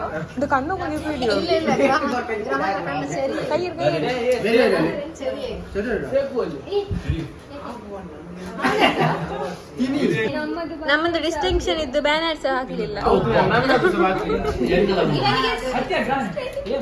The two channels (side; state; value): both; identical; correlation 1.00